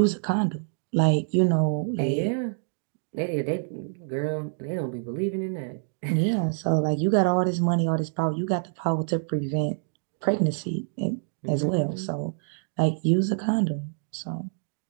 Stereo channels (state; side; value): silent; left; digital silence